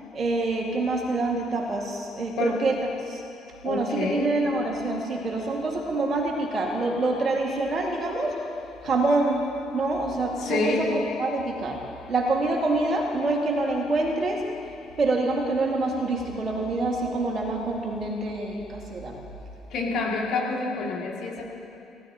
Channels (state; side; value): normal; both; correlation 0.71